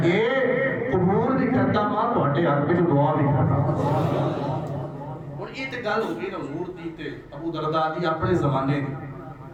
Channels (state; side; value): identical; both; correlation 1.00